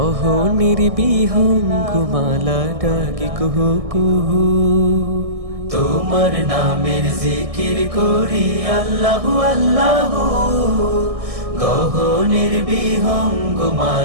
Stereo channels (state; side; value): late; left; 1.6 ms